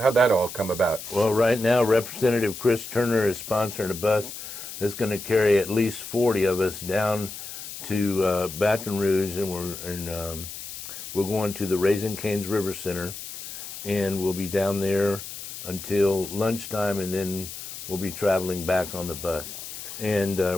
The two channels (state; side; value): noise; left; hiss, 10 dB below the sound